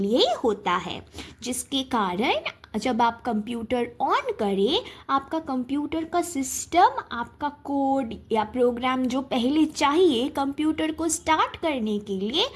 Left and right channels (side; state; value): both; identical; correlation 1.00